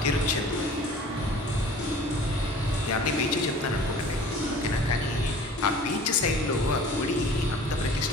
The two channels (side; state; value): both; normal; correlation 0.46